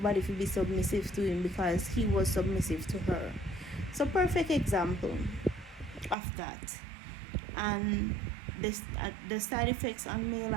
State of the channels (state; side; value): drops out; left; at 6.2 s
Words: to be submissive to him because he was submissive to her. So perfect example of that. And the side effects on male,